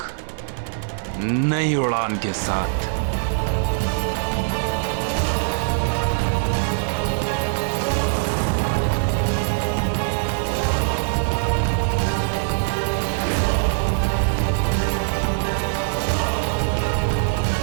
नई उड़ान के साथ।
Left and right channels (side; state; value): left; silent; digital silence